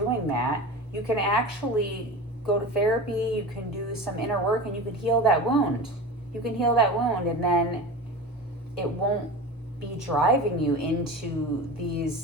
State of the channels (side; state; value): both; normal; correlation 0.31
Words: that, you can actually go to therapy, you can do some inner work, and you can heal that wound. You can heal that wound, and then it won't be driving you into these